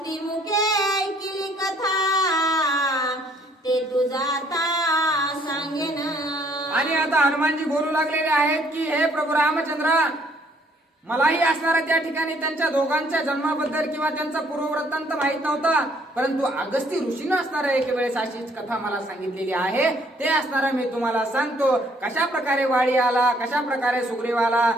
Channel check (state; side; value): normal; both; correlation 0.64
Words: मुखे ऐकिली कथा, ते तू जाता सांगेन. आणि आता हनुमानजी बोलू लागलेले आहेत की हे प्रभू रामचंद्र, मलाही असणारा त्या ठिकाणी त्यांच्या दोघांच्या जन्माबद्दल किंवा त्यांचा पूर्ववृत्तांत माहित नव्हता, परंतु अगस्ती ऋषीनं असणारा एक वेळेस अशीच कथा मला सांगितलेली आहे. ते असणारा मी तुम्हाला सांगतो. कशा प्रकारे वाळी आला, कशा प्रकारे सुग्रीव आला,